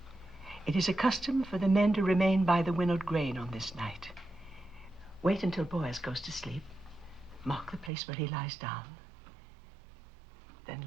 It is a custom for the men to remain by the winnowed grain on this night. Wait until Boaz goes to sleep. Mark the place where he lies down. Then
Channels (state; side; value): drops out; left; at 7.9 s